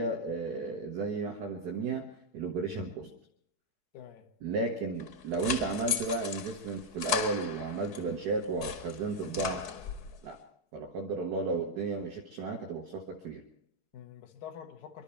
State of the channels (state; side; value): late; left; 4.7 ms